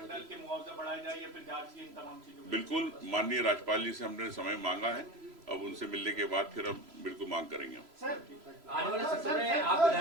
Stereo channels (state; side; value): late; left; 3.0 ms